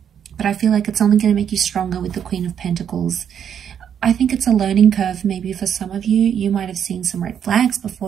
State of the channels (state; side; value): quieter; left; 8.6 dB